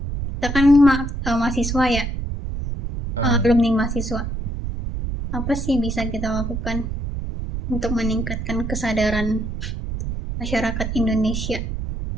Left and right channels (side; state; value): right; noise; rumble, 4 dB below the sound